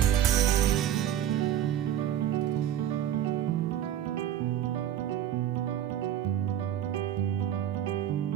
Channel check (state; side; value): quieter; left; 10.9 dB